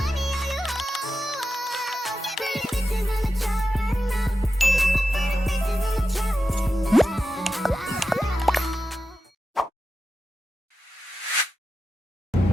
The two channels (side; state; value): both; normal; correlation 0.91